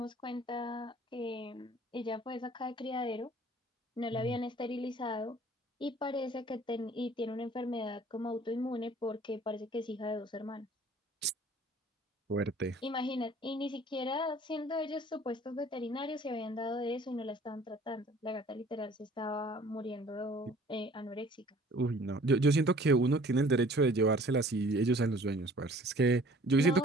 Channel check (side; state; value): both; normal; correlation 0.52